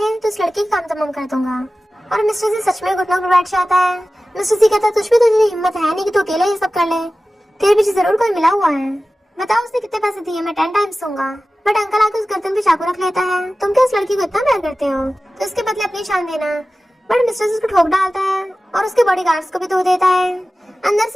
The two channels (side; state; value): both; normal; correlation 0.96